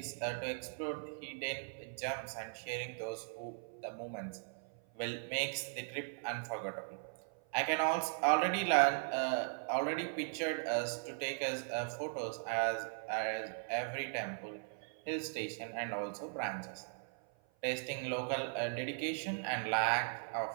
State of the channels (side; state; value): left; silent; 52 dB below the other